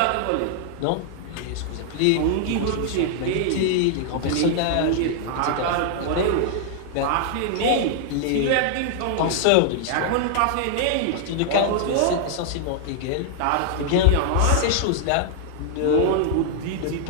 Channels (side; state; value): both; different; correlation -0.01